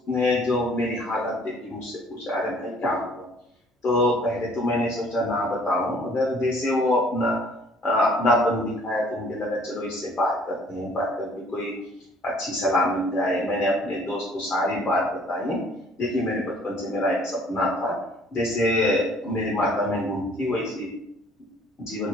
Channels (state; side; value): normal; both; correlation 0.57